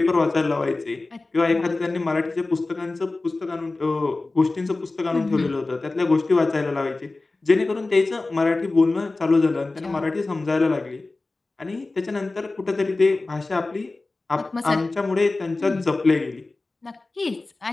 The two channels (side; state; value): right; quieter; 3.3 dB